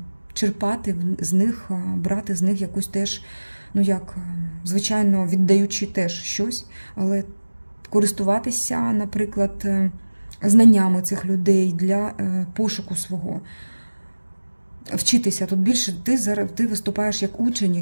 черпати з них, брати з них якусь теж, ну як, звичайно, віддаючи теж щось, але користуватися, наприклад, знаннями цих людей для пошуку свого. Вчитися. Тут більше ти виступаєш як учень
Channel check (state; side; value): inverted; both; correlation -1.00